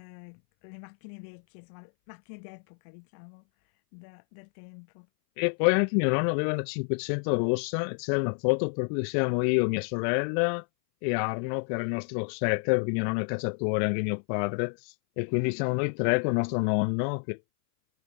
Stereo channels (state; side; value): silent; right; 59 dB below the other